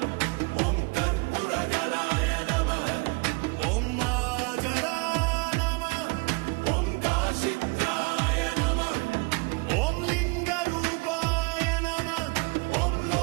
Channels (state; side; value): quieter; left; 28.8 dB